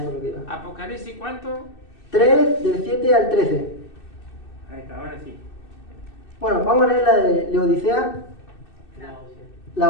es lo que iba. Apocalipsis, ¿cuánto? 3, del 7 al 13. Ahí está, ahora sí. Bueno, vamos a leer la de Laodicea.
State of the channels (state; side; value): late; right; 2.6 ms